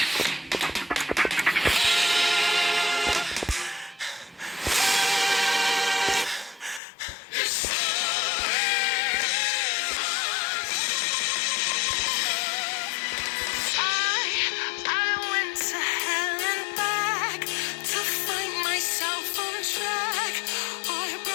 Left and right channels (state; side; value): drops out; right; at 6.8 s